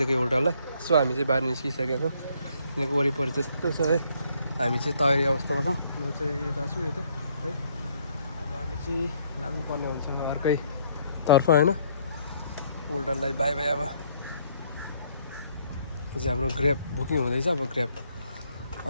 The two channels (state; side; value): inverted; both; correlation -0.67